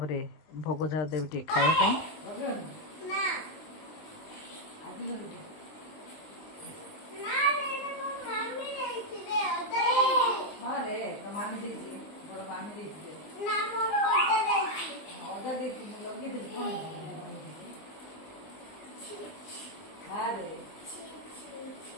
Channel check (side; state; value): right; late; 19 ms